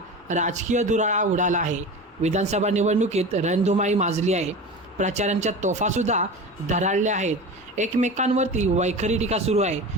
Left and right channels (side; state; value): both; normal; correlation 0.30